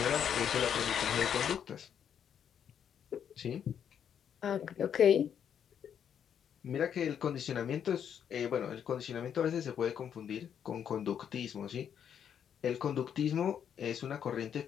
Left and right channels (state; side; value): quieter; right; 8.5 dB